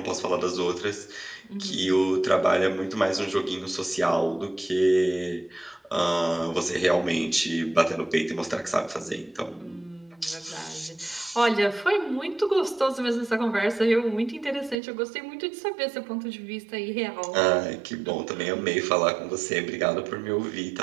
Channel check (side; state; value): left; drops out; at 14.8 s